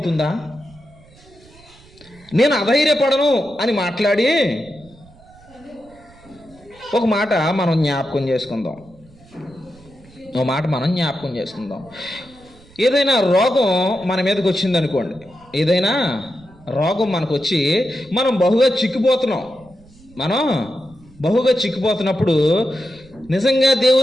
నేను అధైర్యపడను అని మాట్లాడి ఒక మాట మనం జ్ఞాపకం చేసుకుందాం. ఒక మాట మనం జ్ఞాపకం చేసుకుందాం. ఏదైనా రోగం మన మీదకి వచ్చింది అనుకోండి, ఏదైనా రోగం మనకు వచ్చి మనం బహుగా చిక్కిపోతున్నప్పుడు నిజంగా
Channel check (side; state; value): right; noise; rumble, 26 dB below the sound